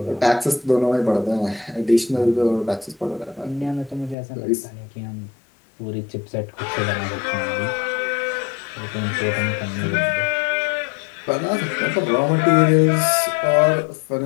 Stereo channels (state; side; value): drops out; right; at 4.2 s